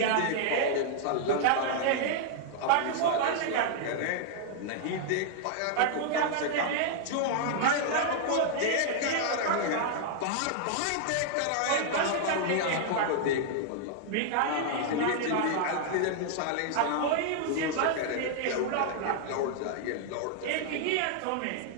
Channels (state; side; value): different; both; correlation -0.01